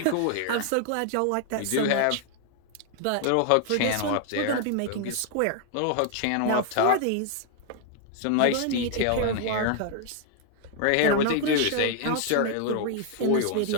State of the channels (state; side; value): different; both; correlation 0.00